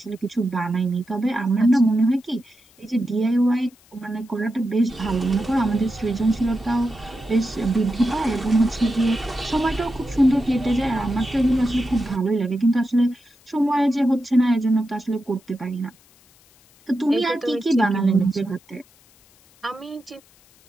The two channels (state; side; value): noise; left; hiss, 30 dB below the sound